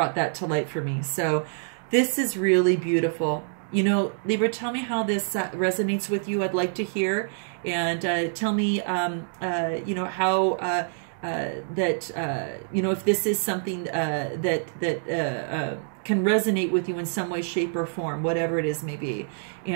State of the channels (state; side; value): silent; left; digital silence